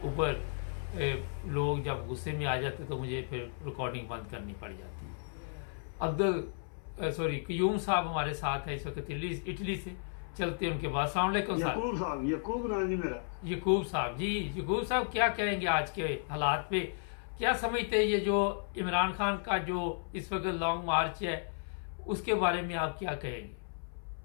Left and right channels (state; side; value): silent; right; 55 dB below the other